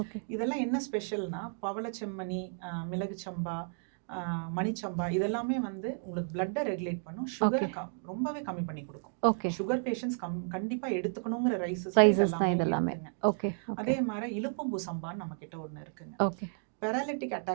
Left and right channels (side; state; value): left; silent; 56 dB below the other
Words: இதெல்லாம் என்ன ஸ்பெஷல்னா பவளச்செம்மணி, மிளகு சம்பா, மணிச்சம்பா இதெல்லாமே வந்து உங்களுக்கு பிளட்டை ரெகுலேட் பண்ணும், சுகரை ரொம்பவே கம்மி பண்ணி கொடுக்கும். சுகர் பேஷண்ட்ஸ் கண்டிப்பா எடுத்துக்கணுங்கிற ரைஸஸ் இதெல்லாமே இருக்குங்க. அதே மாதிரி இலுப்பம்பூ சம்பான்னு நம்ம கிட்ட ஒன்று இருக்குங்க. பெராலிட்டிக்